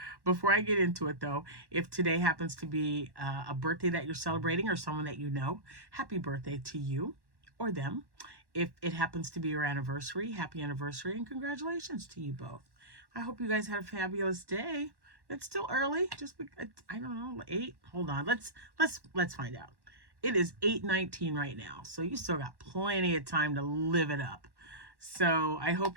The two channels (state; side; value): late; left; 1.1 ms